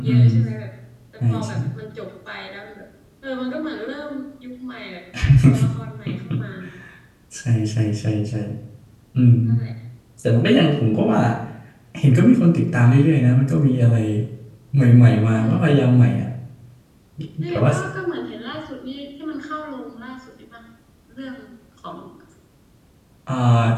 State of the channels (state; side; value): identical; both; correlation 1.00